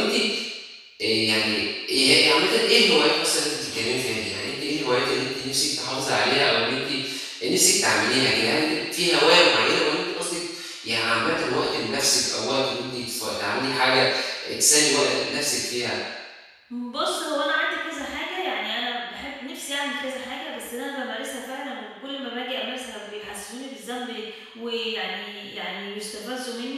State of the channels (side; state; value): both; identical; correlation 1.00